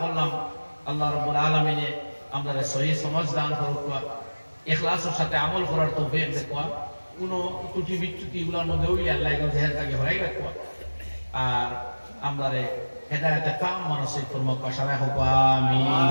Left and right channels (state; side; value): inverted; both; correlation -1.00